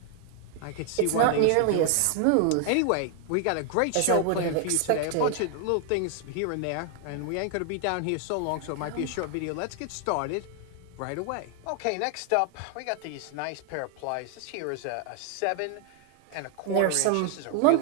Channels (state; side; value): different; both; correlation 0.00